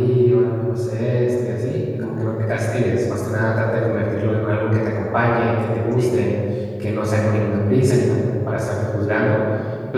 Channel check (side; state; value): both; identical; correlation 1.00